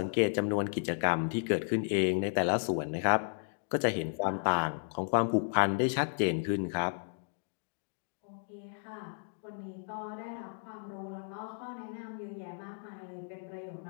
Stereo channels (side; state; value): right; silent; digital silence